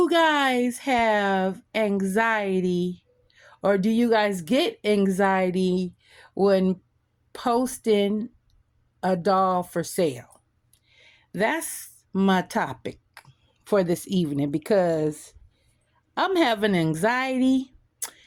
guys have anxiety?" Or do you guys get anxiety when posting a doll for sale? That's my topic for this evening because I'm having anxiety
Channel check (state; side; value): identical; both; correlation 1.00